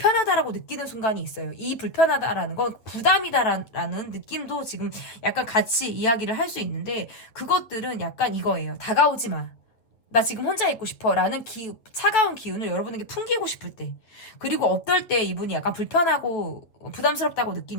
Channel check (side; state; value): right; late; 8.7 ms